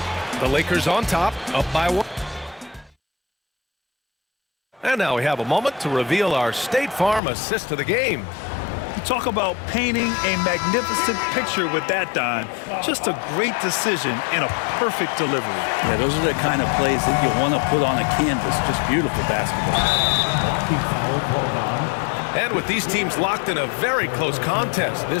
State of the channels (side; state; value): right; drops out; at 7.2 s